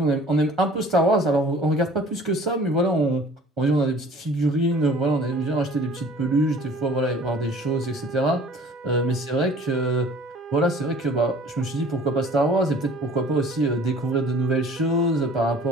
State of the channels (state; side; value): normal; both; correlation 0.49